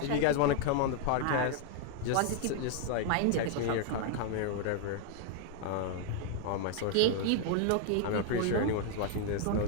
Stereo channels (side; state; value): both; different; correlation 0.00